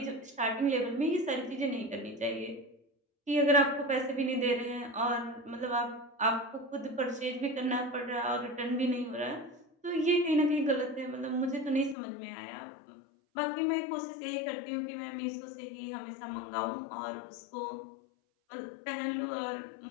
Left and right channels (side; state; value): right; drops out; at 12.0 s